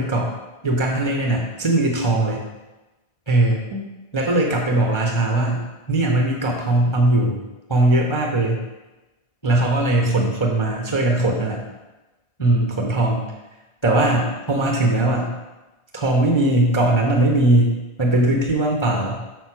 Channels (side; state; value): right; late; 1.3 ms